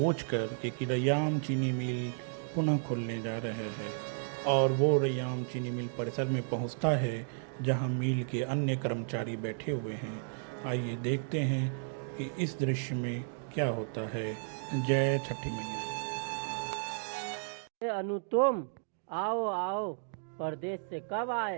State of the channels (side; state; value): left; silent; digital silence